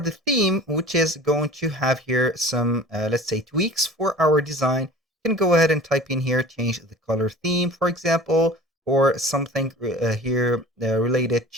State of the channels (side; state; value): both; normal; correlation 0.42